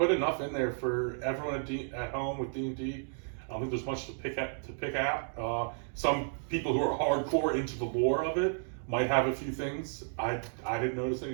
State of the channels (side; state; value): left; silent; digital silence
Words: enough in there for everyone at home with D&D. I don't think there's much to pick out. Some people who are hardcore into the lore of it might have a few things. I didn't notice